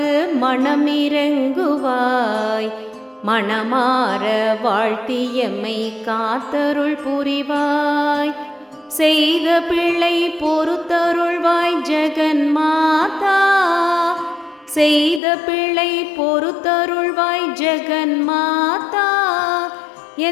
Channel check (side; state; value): right; drops out; at 15.2 s